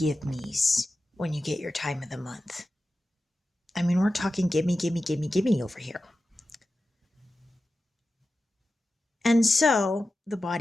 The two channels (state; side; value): normal; both; correlation 0.93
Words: me's when you get your time of the month. I mean, we're talking gimme, gimme, gimme, gimme over here. And so the